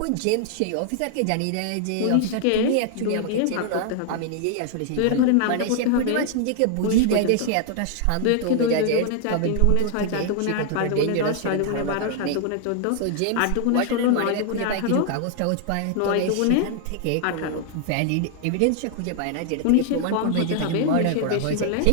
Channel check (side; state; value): both; different; correlation 0.00